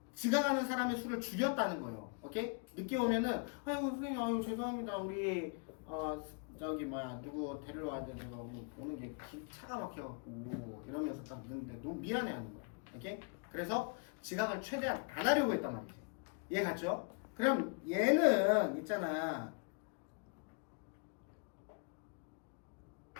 지각하는 사람의 수를 줄였다는 거예요. 오케이? 늦게 오면은 아유 선생님 아유 죄송합니다. 우리 저기 뭐야 누구 데리러 와야 되는데 오는 게 차가 막혀갖고 이러면서 딱 늦는데 너무 미안해 하는 거야. 오케이? 그래서 지각을 최대한 안 하려고 했단 말이지. 이해 갔죠? 그럼 얘는 있잖아.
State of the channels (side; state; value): right; quieter; 35.8 dB